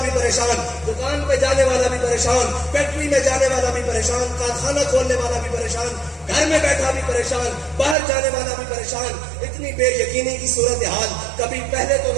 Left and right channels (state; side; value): drops out; left; at 8.0 s